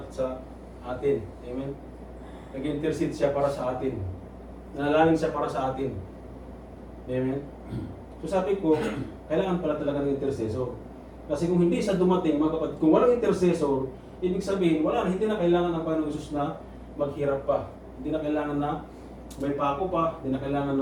atin. Amen? Nag-intercede siya para sa atin. Nanalangin siya para sa atin. Amen? So sabi ko, kailangan pala talaga ng intercessor. Kasi kung hindi siya dumating, mga kapatid, kung walang intercessor, ibig sabihin, hindi na kailangan ng Panginoong Isus na maghirap pa. Hindi na kailangan na may pako pa, hindi na kailangan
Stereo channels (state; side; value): identical; both; correlation 1.00